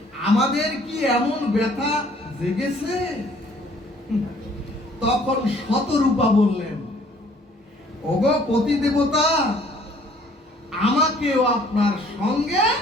আমাদের কি এমন ব্যথা জেগেছে? তখন শতরূপা বললেন, ওগো পতি দেবতা, আমাকেও আপনার সঙ্গে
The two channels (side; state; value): both; normal; correlation 0.58